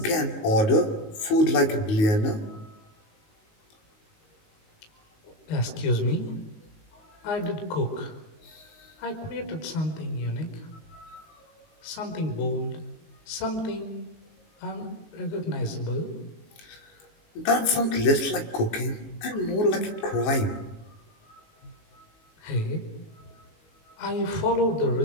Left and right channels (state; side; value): late; right; 19 ms